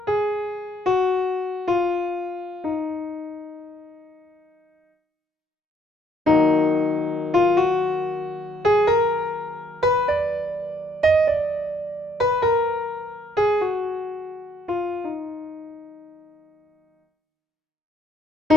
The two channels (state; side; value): normal; both; correlation 0.69